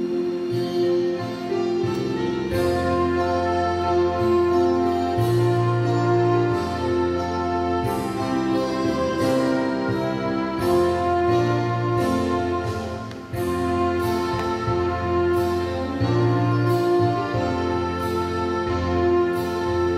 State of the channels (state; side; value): identical; both; correlation 1.00